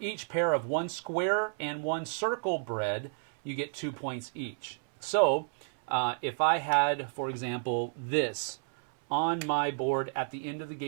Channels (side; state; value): left; silent; 57 dB below the other